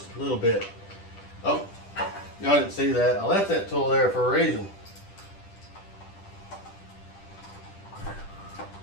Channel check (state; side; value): late; right; 10 ms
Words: a little bit. Oh, y'all didn't see that. I left that tool there for a reason.